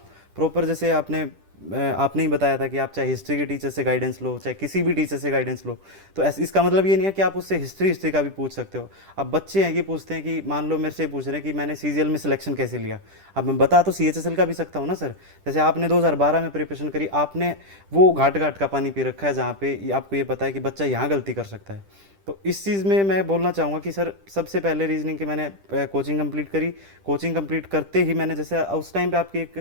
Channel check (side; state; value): left; late; 10 ms